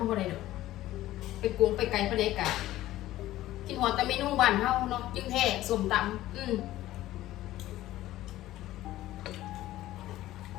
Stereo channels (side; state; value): right; quieter; 15.1 dB